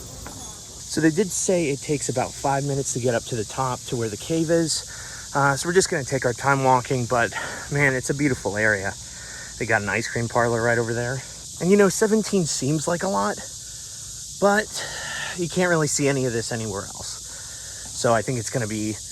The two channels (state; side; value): identical; both; correlation 1.00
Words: So they did say it takes about 5 minutes to get up to the top to where the cave is. So we're just going to take our time walking, but man, it's a beautiful area. They got an ice cream parlor right over there. And you know, 17 seems like a lot, but you can't really see any of this anywhere else. So I think it's going to be